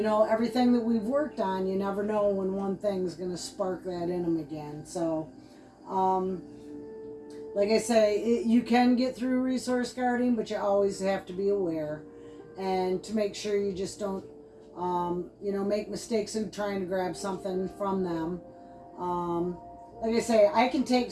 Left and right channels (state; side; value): identical; both; correlation 1.00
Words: that we've worked on, you never know when one thing's going to spark that in him again. So, like I say, you can get through resource guarding, but you always have to be aware and to make sure you just don't, make mistakes in trying to grab something from them. Like I say, I can take